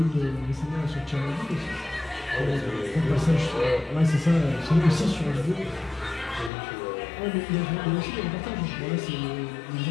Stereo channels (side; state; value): right; drops out; at 6.5 s